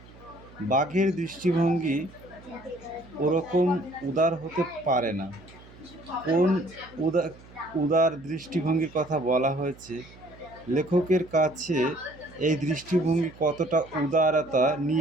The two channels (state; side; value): noise; right; hum, 22 dB below the sound